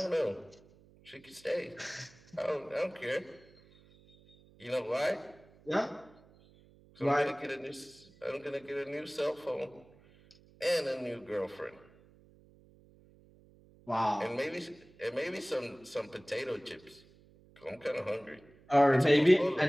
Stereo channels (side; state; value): right; noise; hum, 27 dB below the sound